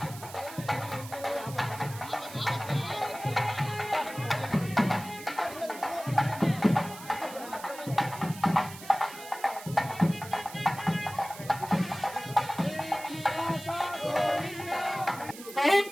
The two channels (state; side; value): noise; right; hiss, 15 dB below the sound